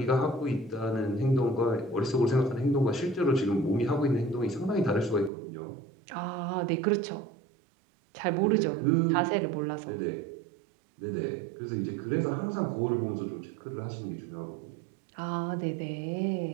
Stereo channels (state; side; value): drops out; left; at 5.3 s